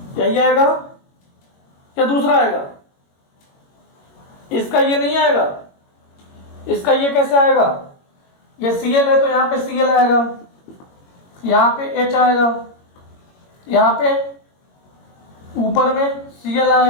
यही आएगा या दूसरा आएगा, इसका ये नहीं आएगा, इसका ये कैसे आएगा, ये Cl है तो यहां पे Cl आएगा, यहां पे H आएगा, यहां पे ऊपर में Cl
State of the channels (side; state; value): right; late; 21 ms